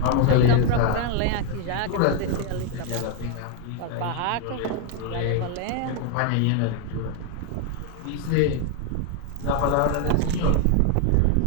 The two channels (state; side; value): different; both; correlation 0.01